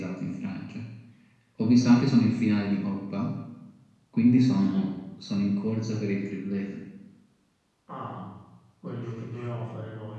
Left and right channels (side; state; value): both; identical; correlation 1.00